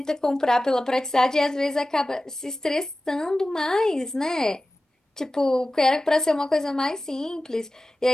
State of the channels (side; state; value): both; normal; correlation 0.95